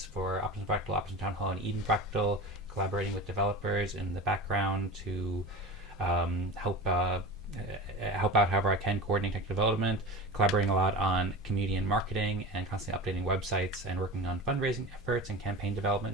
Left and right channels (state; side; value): normal; both; correlation 0.31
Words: for Optimism Fractal, Optimism Town Hall, and Eden Fractal, collaborating with developers in the background to help out however I can, coordinate tech development, collaborating a lot on community and marketing, and constantly updating websites, and working on fundraising efforts and campaign